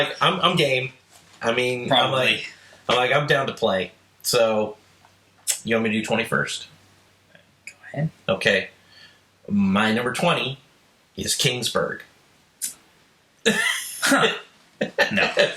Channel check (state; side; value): identical; both; correlation 1.00